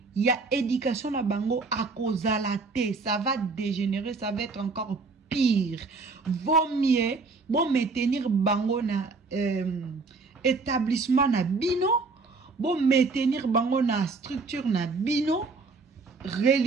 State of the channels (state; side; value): quieter; left; 4.1 dB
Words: ya éducation na bango akozala te ça va dégénérer ça va être encore pire. Vaut mieux bon maintenir bango na établissement na bino, bon maintenir bango na structure na bino